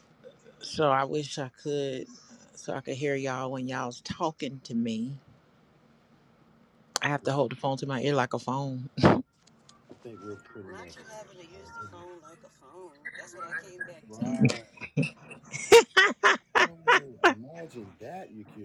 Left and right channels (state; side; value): identical; both; correlation 1.00